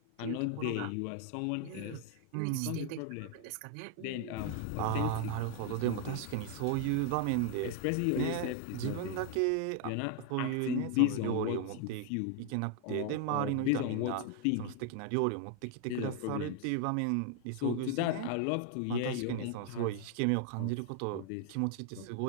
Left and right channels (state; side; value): different; both; correlation 0.01